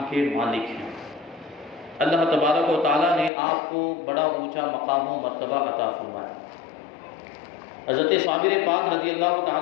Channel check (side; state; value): right; drops out; at 3.3 s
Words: کے مالک ہیں۔ اللہ تبارک و تعالیٰ نے آپ کو بڑا اونچا مقام و مرتبہ عطا فرمایا۔ حضرت صابر پاک رضی اللہ